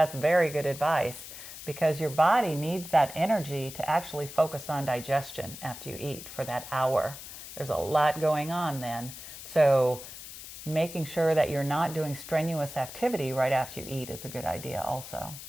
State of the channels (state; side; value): noise; left; hiss, 12 dB below the sound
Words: very good advice because your body needs that energy to actually focus on digestion after you eat for that hour. There's a lot going on then. So making sure that you're not doing strenuous activity right after you eat is a good idea also.